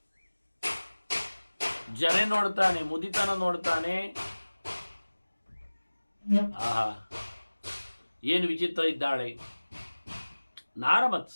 ಜರೆ ನೋಡ್ತಾನೆ, ಮುದಿತನ ನೋಡ್ತಾನೆ. ಆಹಾ, ಏನು ವಿಚಿತ್ರ ಇದ್ದಾಳೆ.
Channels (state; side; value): inverted; both; correlation -1.00